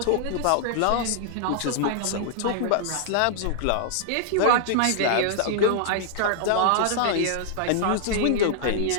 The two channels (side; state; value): both; different; correlation -0.01